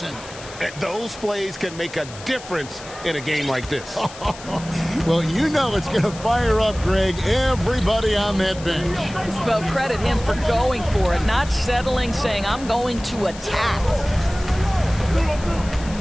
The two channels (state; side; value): noise; left; hiss, 16 dB below the sound